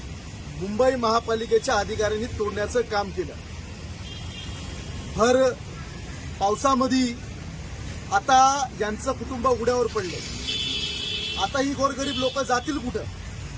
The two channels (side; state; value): both; identical; correlation 1.00